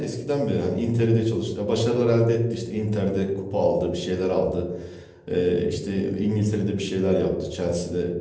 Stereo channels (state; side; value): identical; both; correlation 1.00